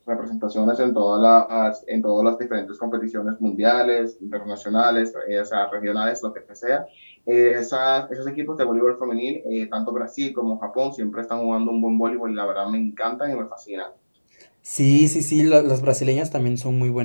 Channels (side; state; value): both; inverted; correlation -1.00